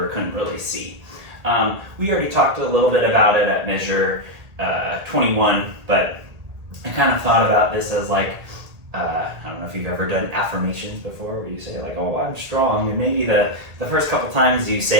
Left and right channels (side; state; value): left; late; 1.8 ms